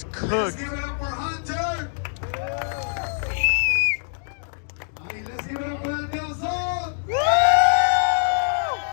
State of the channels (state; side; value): silent; right; digital silence